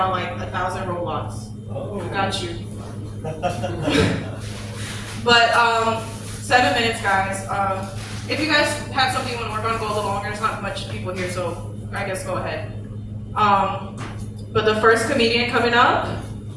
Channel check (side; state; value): both; identical; correlation 1.00